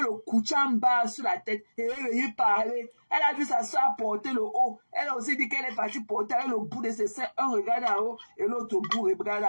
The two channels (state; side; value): inverted; both; correlation -1.00